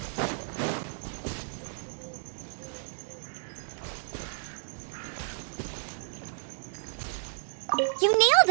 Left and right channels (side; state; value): left; silent; 57 dB below the other